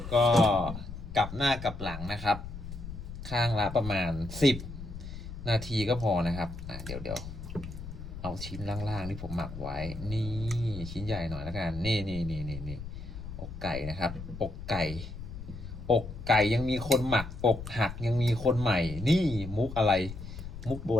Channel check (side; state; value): left; noise; rumble, 10 dB below the sound